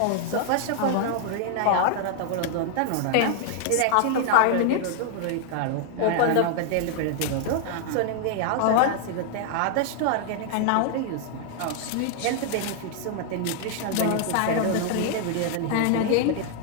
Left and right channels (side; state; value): both; different; correlation 0.00